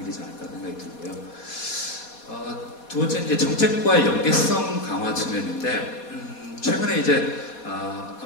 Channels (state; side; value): late; right; 4.2 ms